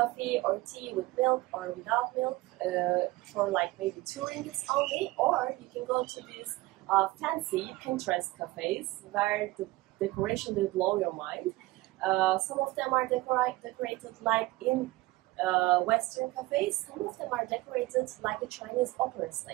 or tea with milk or without milk for like maybe 2 ringgits only, or you can go to these fancy Pinterest cafes where the decoration will blow your mind. Some of them are decorated like in Western cafes, some of them are decorated like a Chinese opera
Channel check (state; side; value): quieter; left; 19.9 dB